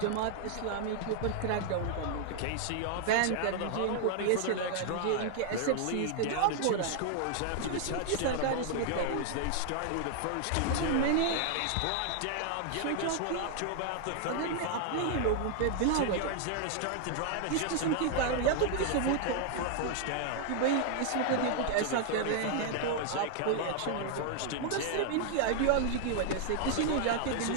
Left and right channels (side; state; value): both; different; correlation 0.00